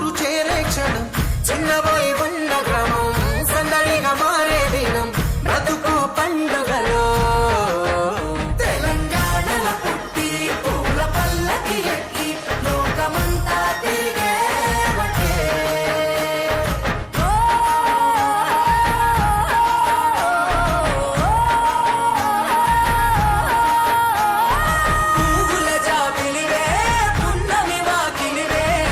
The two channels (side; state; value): both; identical; correlation 1.00